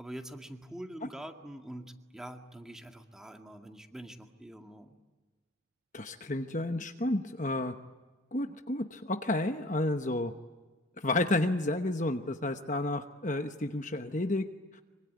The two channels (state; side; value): normal; both; correlation 0.50